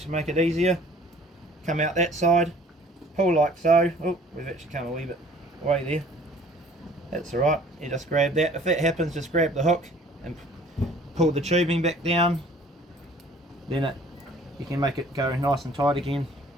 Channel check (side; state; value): both; normal; correlation 0.53